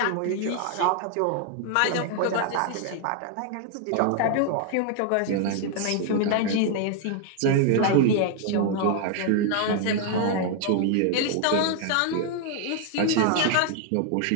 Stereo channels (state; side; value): different; both; correlation 0.00